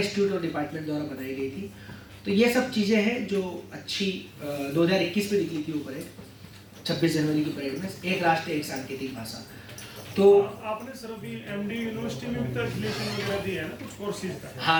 और डिपार्टमेंट द्वारा बनाई गई थी। तो ये सब चीज़ें हैं जो अच्छी 2021 में निकली थी वो परेड, 26 जनवरी की परेड में, एक राष्ट्र एक सांकेतिक भाषा। तो आपने सर अभी MD यूनिवर्सिटी में भी तो एफिलिएशन वगैरह दिया है ना कुछ कोर्सेज का?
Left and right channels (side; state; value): both; identical; correlation 1.00